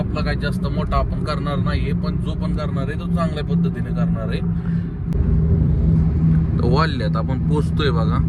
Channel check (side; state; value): both; identical; correlation 1.00